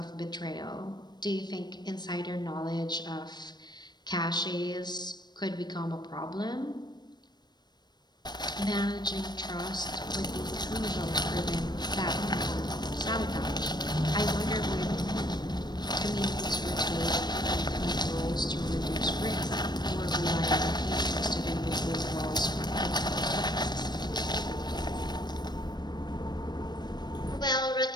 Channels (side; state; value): right; late; 0.21 ms